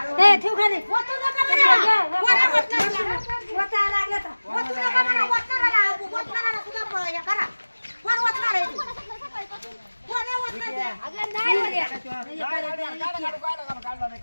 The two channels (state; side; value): inverted; both; correlation -1.00